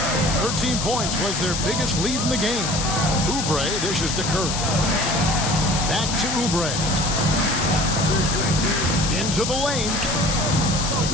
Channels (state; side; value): noise; left; hiss, 3 dB below the sound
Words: 13 points was their biggest lead in the game. Oubre dishes to Curry. Back to Oubre. Into the lane.